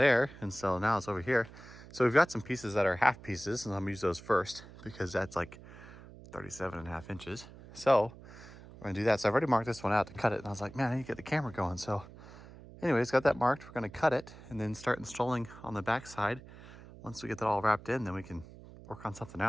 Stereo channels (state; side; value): noise; right; hum, 18 dB below the sound